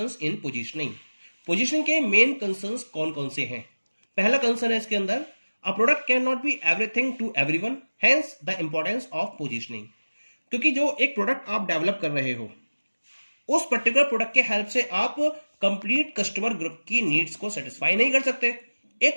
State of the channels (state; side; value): inverted; both; correlation -1.00